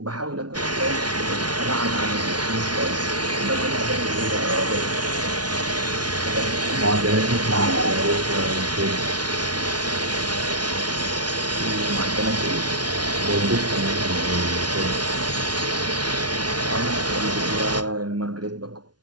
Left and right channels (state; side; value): late; left; 0.69 ms